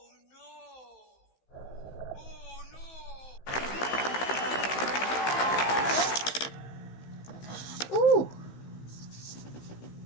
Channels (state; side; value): late; right; 16 ms